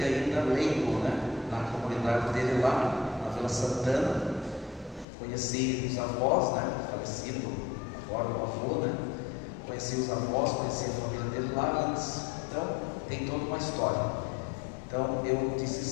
ainda leigo, na comunidade dele lá, na Vila Santana. Conheci os avós, falecido agora o avô, Conheci os avós, conheci a família dele lá antes. Então, tem toda uma história. Então, eu disse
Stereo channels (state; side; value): drops out; right; at 5.1 s